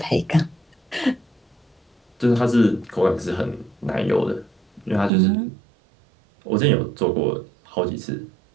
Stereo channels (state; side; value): drops out; left; at 5.1 s